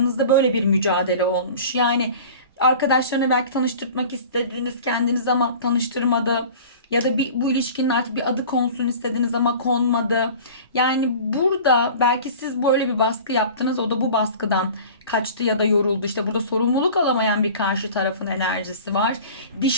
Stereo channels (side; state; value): both; inverted; correlation -0.41